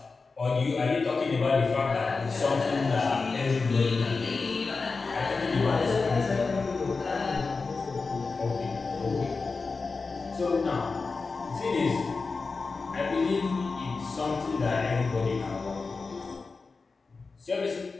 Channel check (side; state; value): right; quieter; 4.2 dB